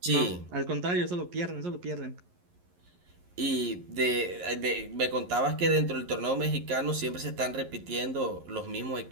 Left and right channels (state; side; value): late; left; 11 ms